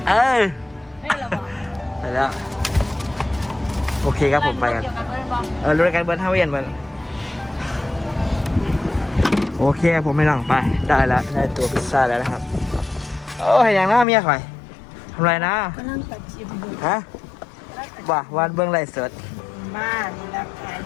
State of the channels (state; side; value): drops out; right; at 14.1 s